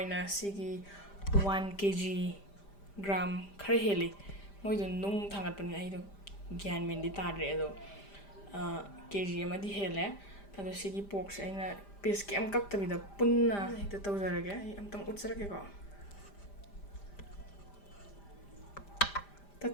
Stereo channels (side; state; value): right; late; 5.0 ms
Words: ꯁꯤꯒꯤ 1 kg ꯒ꯭ꯔꯥꯝ ꯈꯔ ꯍꯦꯜꯂꯤ ꯃꯣꯏꯗꯣ ꯅꯨꯡ ꯊꯥꯡꯒꯠꯄꯅꯤꯅ ꯑꯩꯗꯣ ꯒ꯭ꯌꯥꯟ ꯃꯦꯟꯗꯤ ꯇꯥꯗ꯭ꯔꯦ ꯑꯗꯣ kg ꯑꯃꯗꯤ ꯍꯦꯜꯂꯦ. ꯑꯗꯣ ꯁꯤꯒꯤ ꯄꯣꯛꯁꯦ ꯑꯩꯅ ꯄꯤꯁ ꯀꯩꯝ ꯀꯛꯇꯕꯤꯗ ꯄꯨꯟꯅ ꯍꯦꯛꯇ ꯇꯧꯖꯔꯒꯦ. ꯑꯩ ꯑꯝꯇꯪ ꯎꯠꯆꯔꯛꯀꯦꯀꯣ.